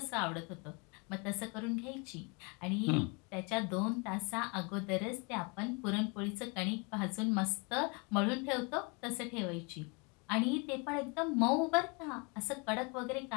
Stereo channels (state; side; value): quieter; right; 31.5 dB